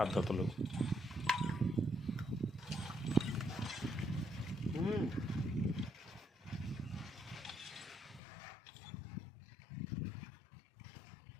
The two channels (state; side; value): drops out; right; at 8.2 s